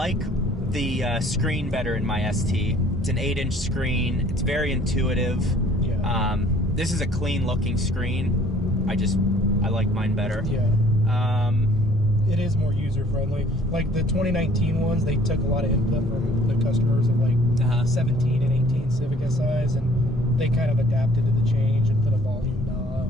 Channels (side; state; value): both; normal; correlation 0.56